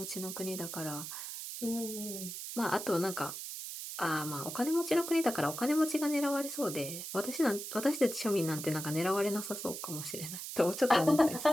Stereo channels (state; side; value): noise; right; hiss, 7 dB below the sound